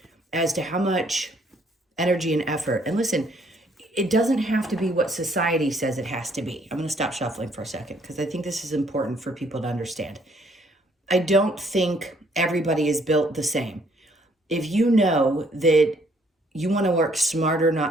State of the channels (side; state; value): both; normal; correlation 0.65